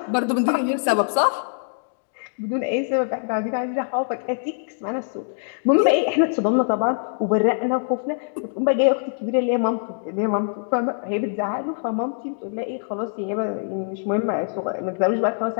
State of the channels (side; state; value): right; silent; digital silence